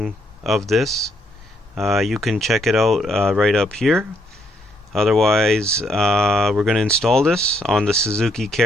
of this, you can check it out right up here. Otherwise, we're going to install this on the Suzuki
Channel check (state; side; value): normal; both; correlation 0.73